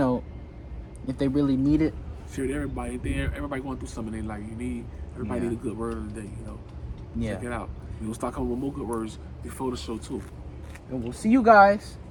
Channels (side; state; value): both; identical; correlation 1.00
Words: really need it. Share it to everybody. Everybody going through something they like. Everybody need a good word of the day. Yeah. Check it out. We gonna start coming with more good words before the show too. And we'll see you guys